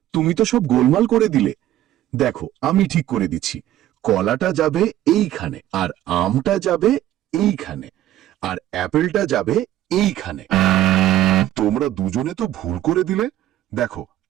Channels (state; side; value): quieter; left; 13.4 dB